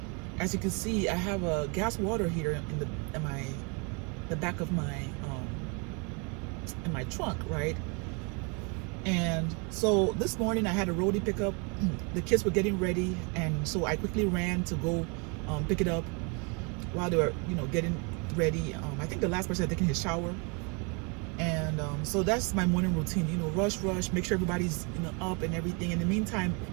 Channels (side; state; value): left; quieter; 33.4 dB